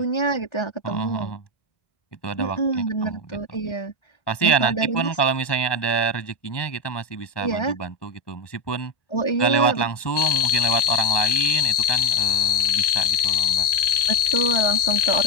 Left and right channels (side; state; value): right; late; 1.2 ms